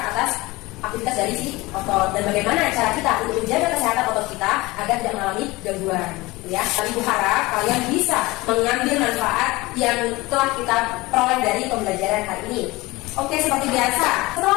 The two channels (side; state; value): right; quieter; 21.3 dB